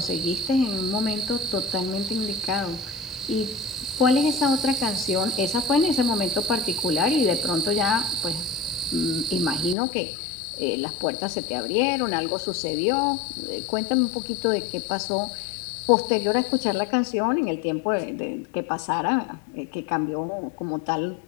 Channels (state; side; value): drops out; right; at 9.8 s